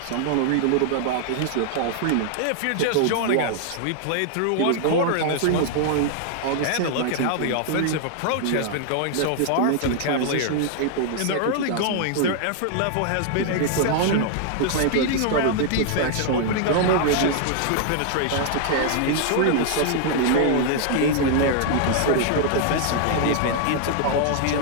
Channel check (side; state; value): both; different; correlation 0.00